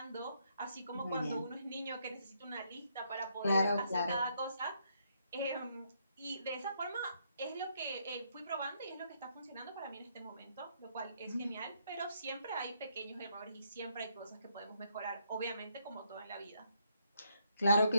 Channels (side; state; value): both; inverted; correlation -0.74